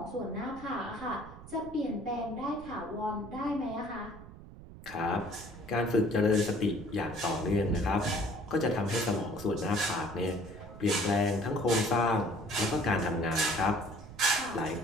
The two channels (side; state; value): right; noise; rumble, 16 dB below the sound